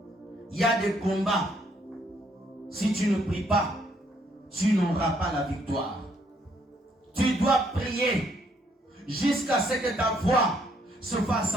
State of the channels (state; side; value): normal; both; correlation 0.69